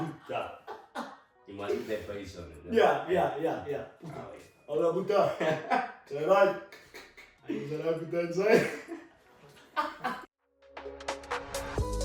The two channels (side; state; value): both; identical; correlation 1.00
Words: You must put that face on it. Yeah. Hola Buddha. Say right. Ayun na lang Buddha inside.